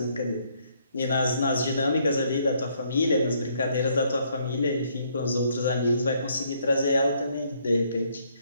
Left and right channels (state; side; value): inverted; both; correlation -0.69